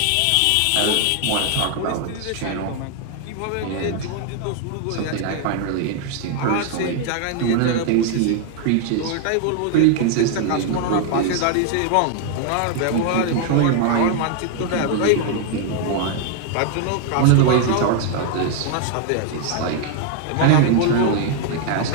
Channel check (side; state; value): both; different; correlation 0.00